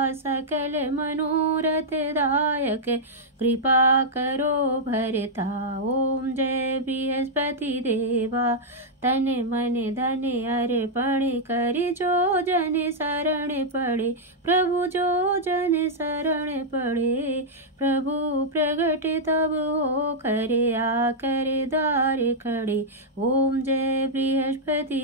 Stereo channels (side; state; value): both; normal; correlation -0.06